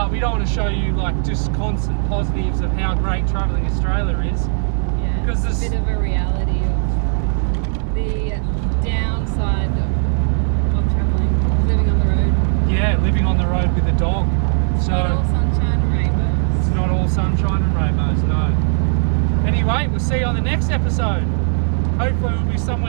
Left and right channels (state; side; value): silent; left; 67 dB below the other